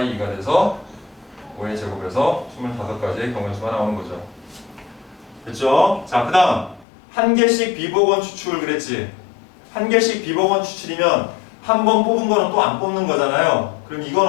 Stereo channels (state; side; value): drops out; right; at 6.9 s